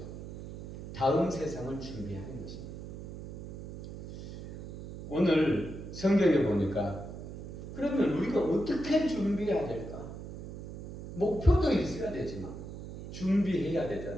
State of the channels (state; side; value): noise; right; hum, 10 dB below the sound